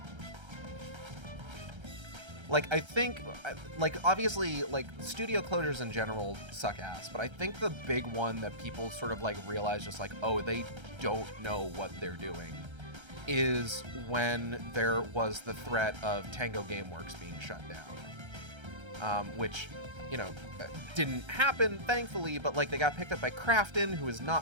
Like, I think, like, obviously, like, studio closures in general suck ass, but I think the big one that people sort of, like, realize just, like, oh, they don't know what they're doing, is when there was the threat of Tango Gameworks being shut down. Which, you know, didn't happen, thankfully, but, like, they got picked up by Krafton, who is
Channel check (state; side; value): late; left; 1.3 ms